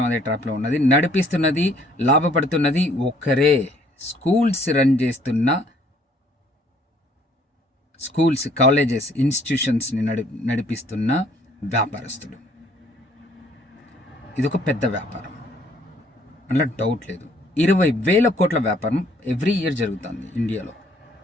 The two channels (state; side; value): normal; both; correlation 0.61